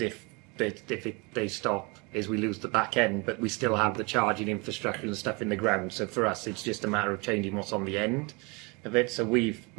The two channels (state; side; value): quieter; left; 28.4 dB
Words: if they stop, is we lose the back end, but we still have the charging infrastructure and stuff in the ground. So for us, it's just a matter of changing what's on the end of it. So we've